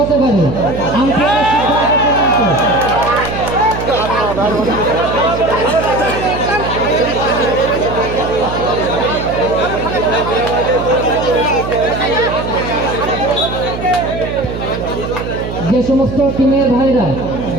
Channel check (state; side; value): noise; right; hum, 7 dB below the sound